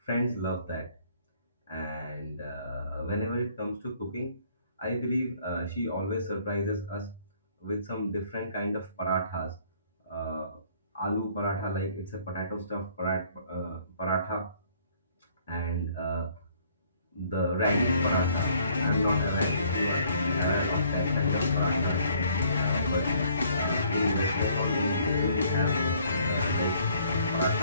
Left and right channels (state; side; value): inverted; both; correlation -0.61